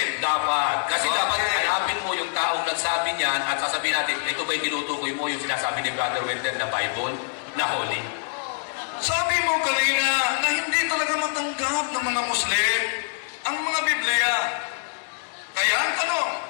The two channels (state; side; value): silent; right; digital silence